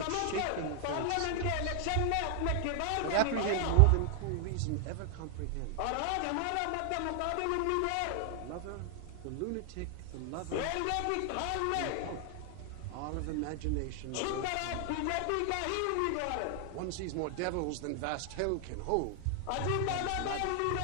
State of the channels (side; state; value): both; different; correlation 0.00